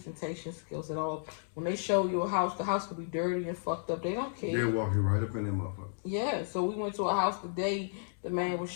skills at all. When they show you a house, the house could be dirty and fucked up. They don't care. They'll walk you right up in that motherfucker. Yeah, so we went to a house today. The man was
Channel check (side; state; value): right; silent; digital silence